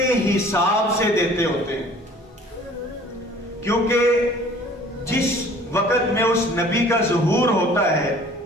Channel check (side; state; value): both; normal; correlation 0.51